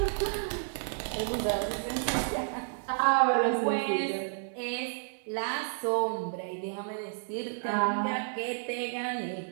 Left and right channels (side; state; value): left; silent; 57 dB below the other